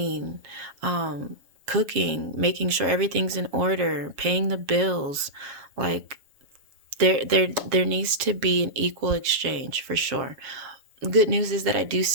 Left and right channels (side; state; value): left; late; 7.1 ms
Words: cooking, making sure everything's in order, paying the bills. Like there needs to be an equal exchange for sure. Good news is that I do